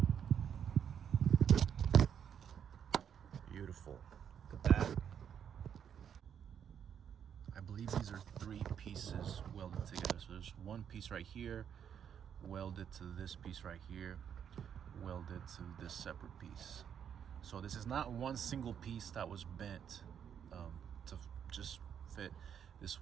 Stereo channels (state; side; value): quieter; left; 8.4 dB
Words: Beautiful. Look at that. I believe these are 3 pieces welded together. So there's one piece right here, welded to this piece right here, welded to this separate piece. So this is not one single piece that was bent to just fit. This